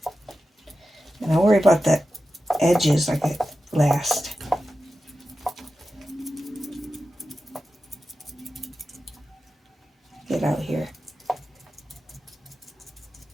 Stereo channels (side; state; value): both; normal; correlation 0.92